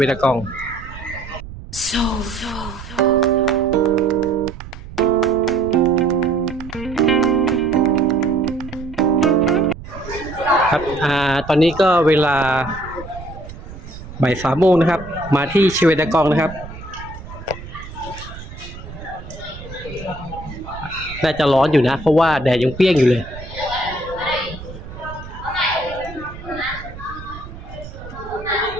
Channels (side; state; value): right; noise; rumble, 14 dB below the sound